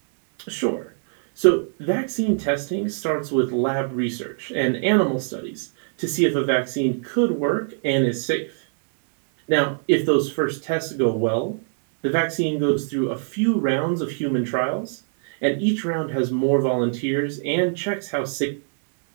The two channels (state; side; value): silent; left; 63 dB below the other